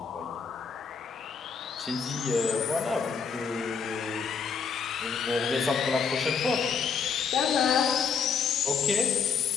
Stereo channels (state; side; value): quieter; right; 6.0 dB